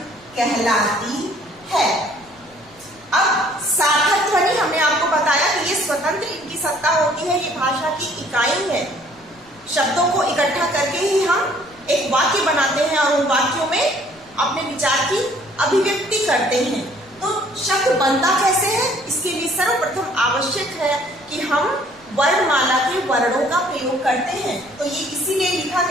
कहलाती है। अब सार्थक ध्वनि हमने आपको बताया कि ये स्वतंत्र इनकी सत्ता होती है, ये भाषा की इकाई है। शब्दों को इकट्ठा करके ही हम एक वाक्य बनाते हैं और उन वाक्यों में अपने विचार की अभिव्यक्ति करते हैं। तो शब्द बनता कैसे है, इसके लिए सर्वप्रथम आवश्यक है कि हम वर्णमाला के वर्णों का प्रयोग करते हैं। तो ये इसीलिए लिखा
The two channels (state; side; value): noise; left; rumble, 29 dB below the sound